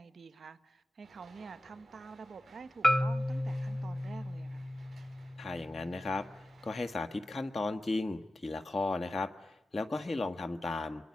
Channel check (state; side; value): normal; both; correlation 0.94